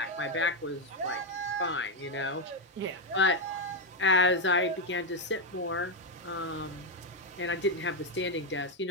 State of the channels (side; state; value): both; normal; correlation 0.04